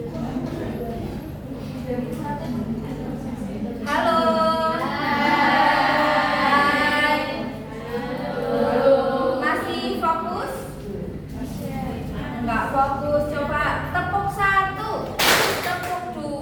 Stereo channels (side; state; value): both; identical; correlation 1.00